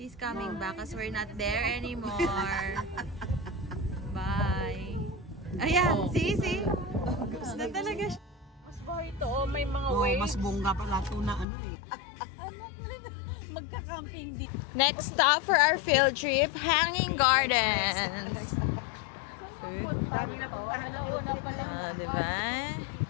coming back because we're not there anymore. Bye. Ayan, see? Gusto na talaga siya. Mas ba ito? May mga waves. Mas bongga pala ito na Magka-camping dito. Next stop for our field trip, Hanging Gardens. Diba?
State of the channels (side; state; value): right; drops out; at 11.5 s